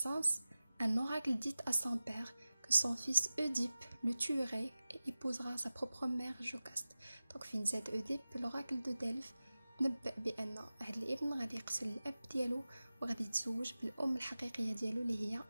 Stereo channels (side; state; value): both; inverted; correlation -0.96